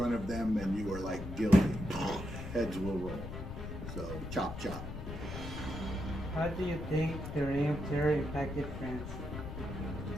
of them, and you were like guilty. Heads will roll. So chop, chop. How do you think the Reign of Terror impacted France?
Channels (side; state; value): left; noise; rumble, 8 dB below the sound